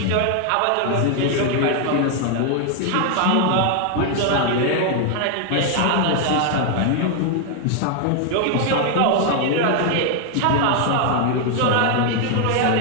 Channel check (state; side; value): different; both; correlation 0.00